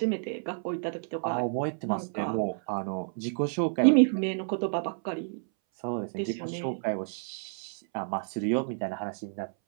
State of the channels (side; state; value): left; silent; 58 dB below the other